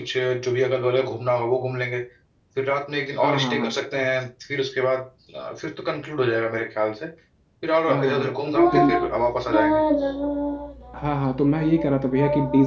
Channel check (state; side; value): identical; both; correlation 1.00